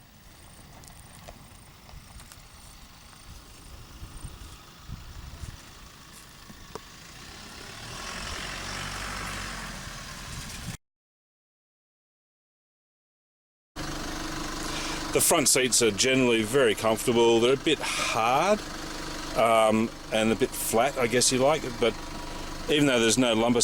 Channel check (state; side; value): identical; both; correlation 1.00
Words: The front seats are generally very comfortable. They're a bit hard and a bit flat, I guess you like, but even though there's no lumbar